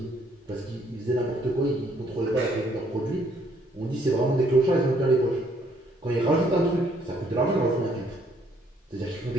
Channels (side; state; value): both; normal; correlation 0.67